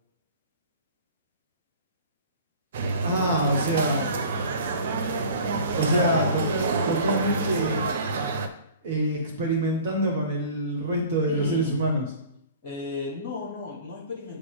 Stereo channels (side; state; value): both; inverted; correlation -0.44